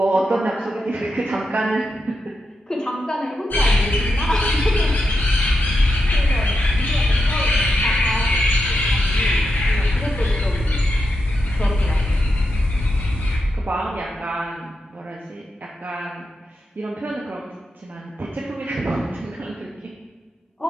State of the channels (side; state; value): both; normal; correlation 0.86